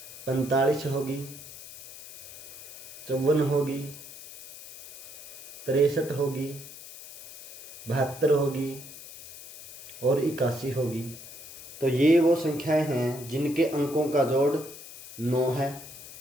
45 होगी, 54 होगी, 63 होगी, 72 होगी और 81 होगी। तो ये वो संख्याएं हैं जिनके अंकों का जोड़ 9 है।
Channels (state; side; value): noise; left; hiss, 15 dB below the sound